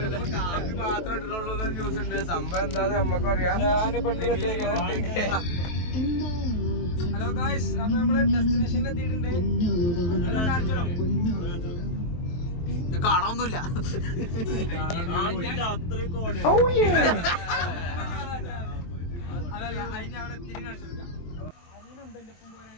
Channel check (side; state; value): right; late; 23 ms